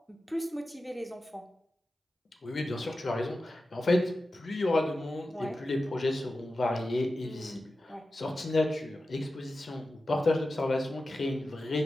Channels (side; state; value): both; normal; correlation 0.93